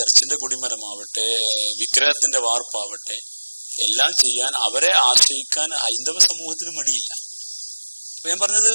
കൊടിമരമാവട്ടെ, വിഗ്രഹത്തിന്റെ വാർപ്പാവട്ടെ, എല്ലാം ചെയ്യാൻ അവരെ ആശ്രയിക്കാൻ ഹൈന്ദവ സമൂഹത്തിന് മടിയില്ല. ഞാൻ പറഞ്ഞത്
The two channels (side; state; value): both; inverted; correlation -1.00